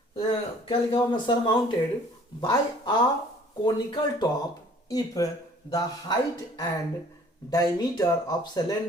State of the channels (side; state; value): both; normal; correlation 0.54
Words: क्या लिखा हुआ, surmounted by a conical top if the height and diameter of